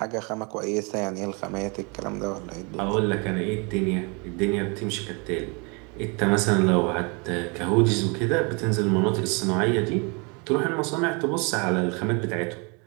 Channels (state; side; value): quieter; left; 31.9 dB